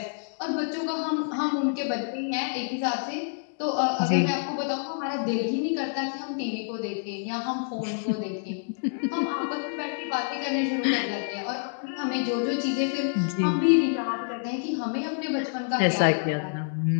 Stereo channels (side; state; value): right; silent; digital silence